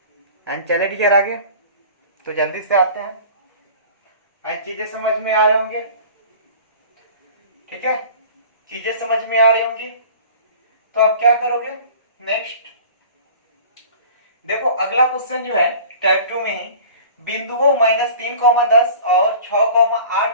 एंड चले डियर आगे, तो जल्दी से आते हैं एंड चीजें समझ में आ रहे होंगे। ठीक है, चीजें समझ में आ रही होंगी। तो अब क्या करोगे नेक्स्ट, देखो अगला क्वेश्चन जो है टाइप 2 में ही, बिंदुओं -3,10 और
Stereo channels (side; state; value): both; inverted; correlation -0.43